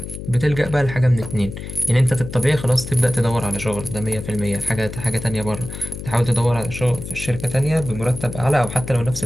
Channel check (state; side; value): noise; left; hum, 9 dB below the sound